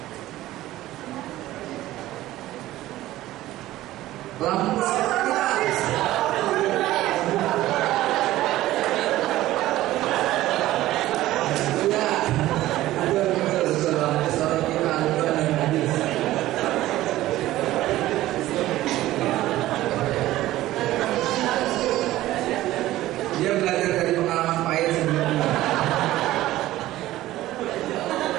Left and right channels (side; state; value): left; quieter; 15.6 dB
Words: Lampu siapa kita? Ya, betul. Lampu siapa kita? Al-Quran dan hadis. Dia belajar dari pengalaman pahit sebelumnya.